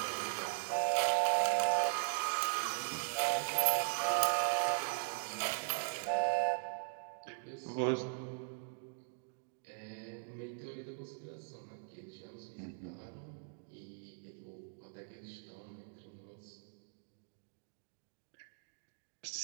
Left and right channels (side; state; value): left; silent; digital silence